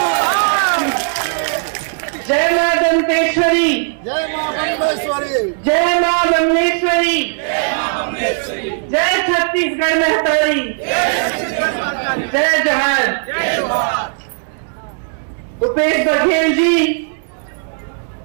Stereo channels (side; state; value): left; silent; digital silence